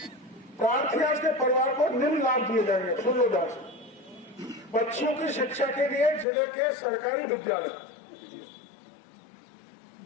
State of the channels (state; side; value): drops out; right; at 6.2 s